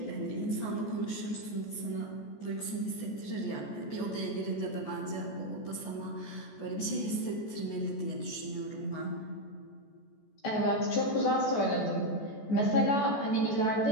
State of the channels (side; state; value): right; late; 14 ms